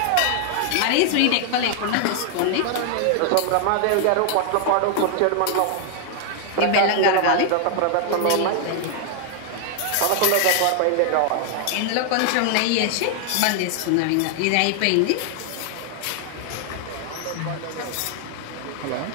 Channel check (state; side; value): different; both; correlation 0.00